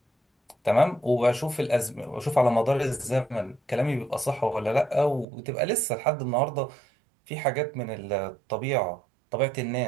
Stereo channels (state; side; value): drops out; left; at 5.2 s